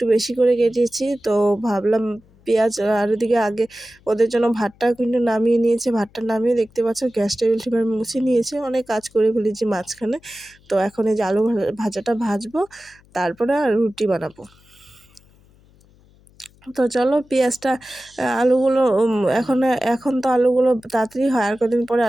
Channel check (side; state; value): left; noise; hum, 29 dB below the sound